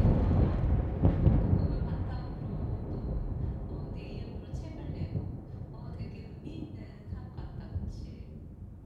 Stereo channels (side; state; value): both; identical; correlation 1.00